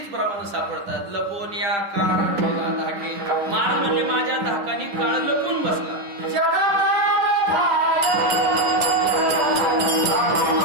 प्रमाण सापडतात. लपून या काळ ठेला धाके. महाराज म्हणले माझ्या धाकानी काळ लपून बसला.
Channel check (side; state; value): left; late; 10 ms